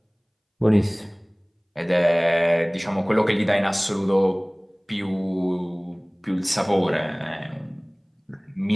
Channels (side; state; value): both; identical; correlation 1.00